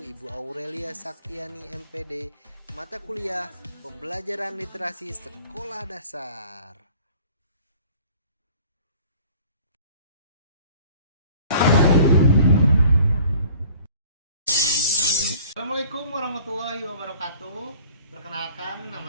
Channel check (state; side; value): inverted; both; correlation -0.50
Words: Ibu Aurelia Saktiani MPD, mata kuliah Pembelajaran Literasi Sekolah Dasar. Assalamualaikum warahmatullahi wabarakatuh. Perkenalkan,